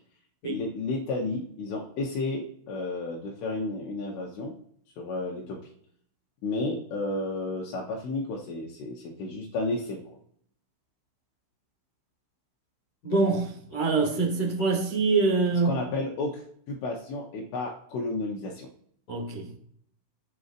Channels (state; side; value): late; right; 16 ms